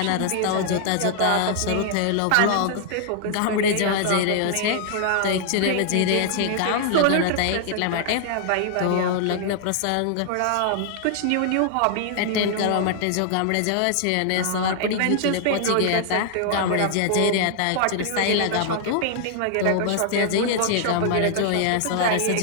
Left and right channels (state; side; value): different; both; correlation 0.00